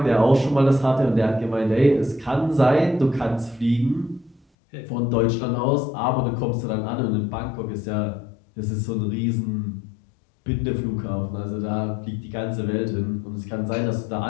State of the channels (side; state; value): right; drops out; at 4.4 s